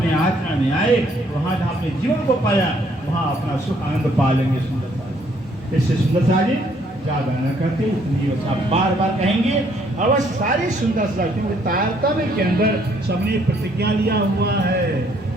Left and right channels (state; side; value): normal; both; correlation 0.66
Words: आचरण में आए, वहाँ जहाँ अपने जीवन को पाया, वहाँ अपना सुख आनंद पा लेंगे। सुंदरता, इससे सुंदरता जी ज्यादा न करते, इतनी आप बार बार कहेंगे। और सारी सुंदरता, क्योंकि तारतम्य के अंदर सबने प्रतिज्ञा लिया हुआ है,